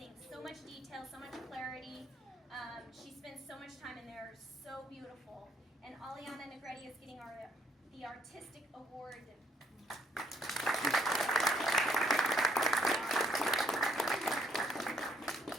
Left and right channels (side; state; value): both; normal; correlation 0.67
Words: So much detail, so much clarity. She spends so much time in there, so beautiful. And Aliana Negretti is getting the Artistic Award.